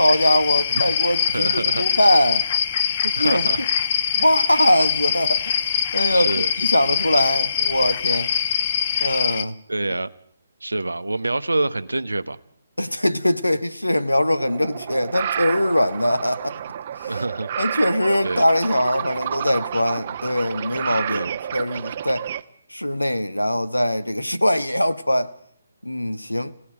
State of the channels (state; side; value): inverted; both; correlation -0.86